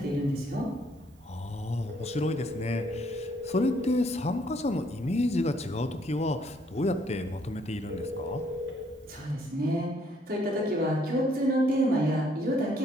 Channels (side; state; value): both; normal; correlation 0.67